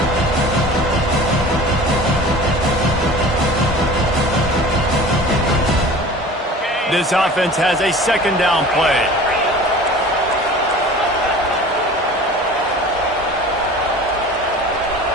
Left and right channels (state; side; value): normal; both; correlation 0.41